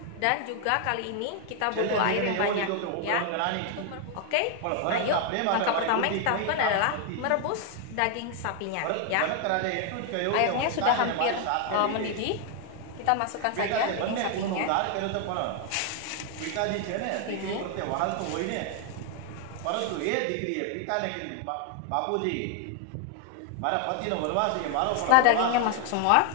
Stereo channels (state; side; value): different; both; correlation 0.00